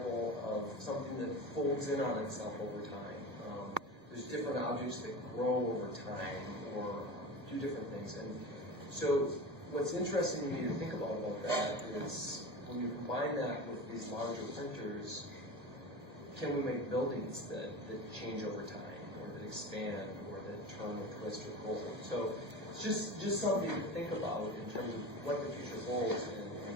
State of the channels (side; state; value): left; late; 1.8 ms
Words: of something that folds in on itself over time. There's different objects that grow over time or do different things. And so what's interesting to me to think about that is when you combine that with these larger printers, can we make buildings that change over time or that expand or that turn or twist or roll? So it's just something to think about in terms of what the future holds and